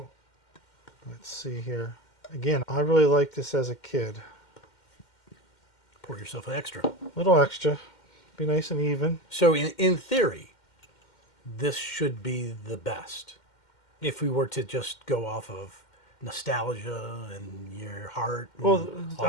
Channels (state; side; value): late; right; 2.1 ms